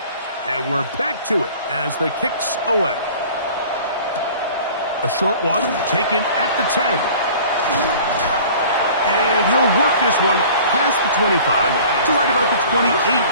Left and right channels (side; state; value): both; inverted; correlation -0.46